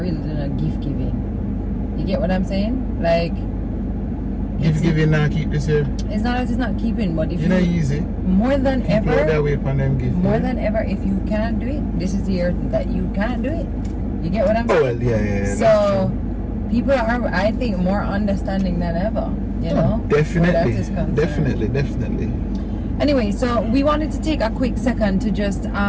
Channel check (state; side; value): identical; both; correlation 1.00